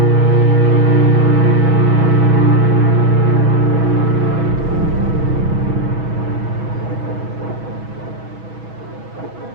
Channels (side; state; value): left; late; 6.2 ms